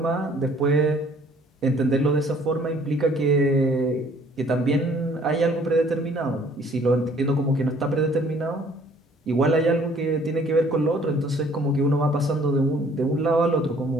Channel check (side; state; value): both; normal; correlation 0.58